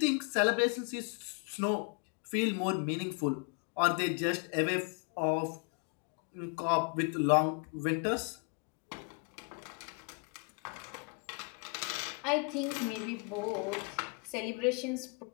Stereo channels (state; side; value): quieter; right; 36.2 dB